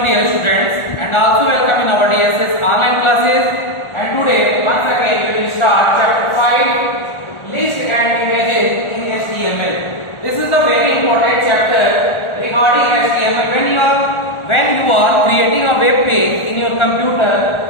dear students and also welcome in our DSS online classes, and today once again we will start chapter 5 list and images in HTML. This is the very important chapter regarding HTML. When you are creating a web page in your computer,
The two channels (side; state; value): right; late; 1.4 ms